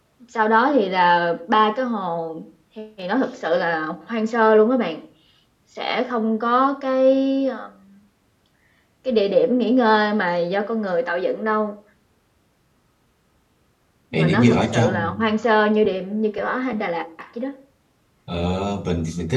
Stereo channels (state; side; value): identical; both; correlation 1.00